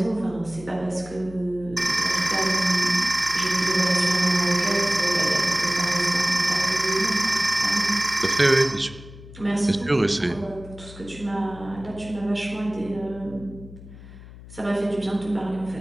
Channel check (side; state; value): left; noise; hum, 17 dB below the sound